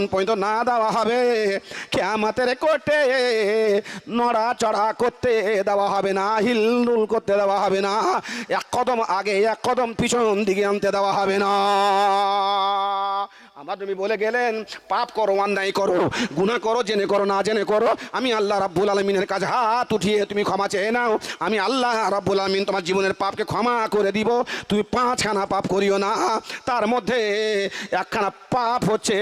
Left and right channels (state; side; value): identical; both; correlation 1.00